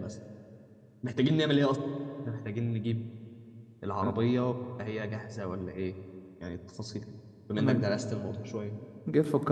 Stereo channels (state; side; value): identical; both; correlation 1.00